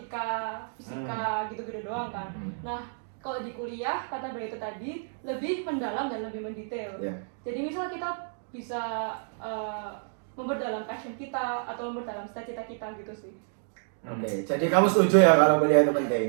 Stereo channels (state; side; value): silent; left; digital silence